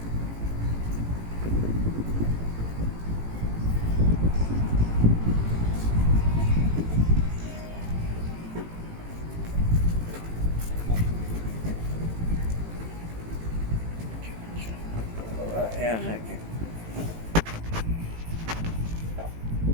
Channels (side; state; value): left; late; 18 ms